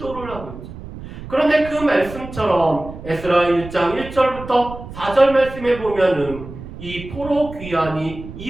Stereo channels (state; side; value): noise; right; rumble, 13 dB below the sound